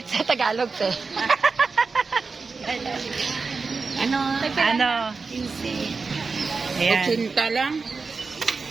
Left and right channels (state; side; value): quieter; left; 4.5 dB